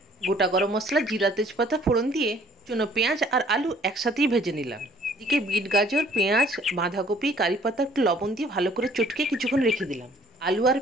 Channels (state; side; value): normal; both; correlation 0.58